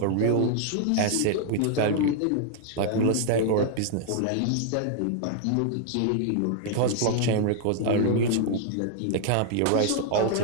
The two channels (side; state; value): both; different; correlation -0.01